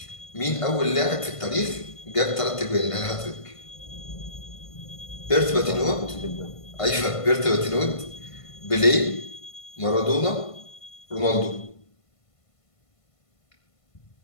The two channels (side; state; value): right; late; 1.5 ms